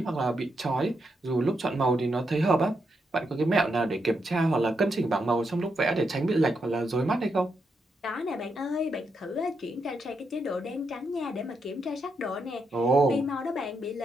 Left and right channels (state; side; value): normal; both; correlation 0.82